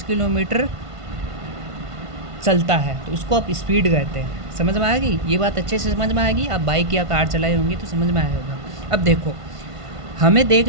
किलोमीटर चलता है, तो इसको आप स्पीड कहते हैं। समझ में आ गई ये बात? अच्छे से समझ में आएगी। आप बाइक या कार चलाए होंगे तो समझ में आया होगा। अब देखो,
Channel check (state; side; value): late; left; 1.5 ms